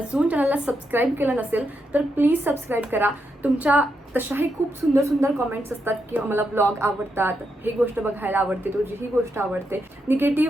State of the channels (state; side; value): normal; both; correlation 0.82